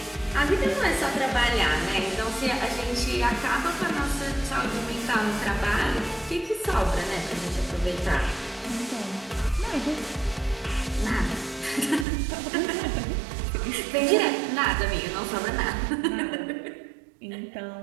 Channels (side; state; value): left; drops out; at 12.1 s